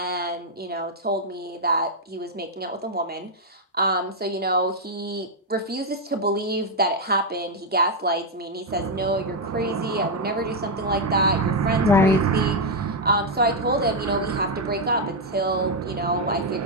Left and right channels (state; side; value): normal; both; correlation 0.00